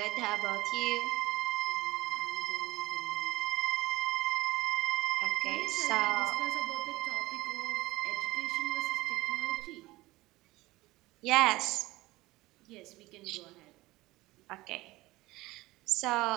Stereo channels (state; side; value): quieter; left; 19.3 dB